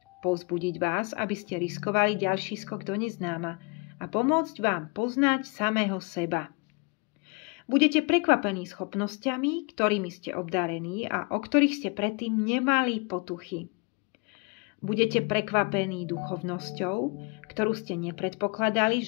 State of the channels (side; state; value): right; quieter; 30.8 dB